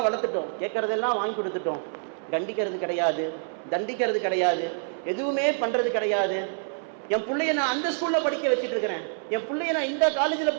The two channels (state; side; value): silent; left; 60 dB below the other